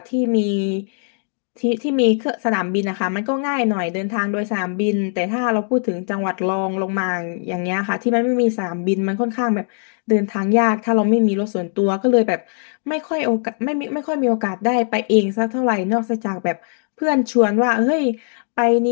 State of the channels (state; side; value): silent; right; 66 dB below the other